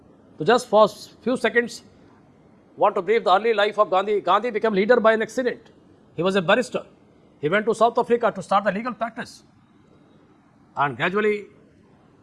So just for few seconds, want to brief the early life of Gandhi. Gandhi became leader by an accident. He was a barrister. He went to South Africa to start the legal practice. And gradually,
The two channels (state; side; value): identical; both; correlation 1.00